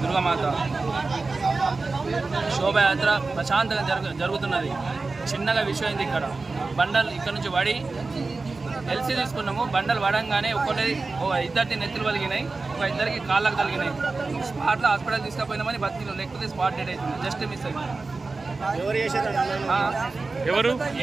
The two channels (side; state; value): left; quieter; 3.8 dB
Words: దుర్గామాత శోభయాత్ర ప్రశాంతంగా జరుగుతున్నది. చిన్నగా విషయం అయింది. ఇక్కడ బండలు ఇక్కడ నుంచి పడి ఎల్సీ తీసుకున్నాము. బండలు పడంగానే ఇద్దరికి నెత్తులు వలిగినాయి, ఒక ఇద్దరికి కాళ్ళకు తగిలినాయి. స్పాట్లో హాస్పిటల్ తీసుకుపోయినామని బతికినాం, లేకపోతే స్పాట్ డెడ్ అవుతుంది. జస్ట్ మిస్ అయింది.